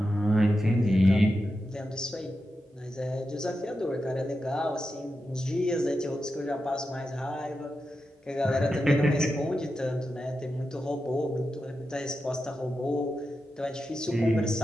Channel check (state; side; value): normal; both; correlation 0.89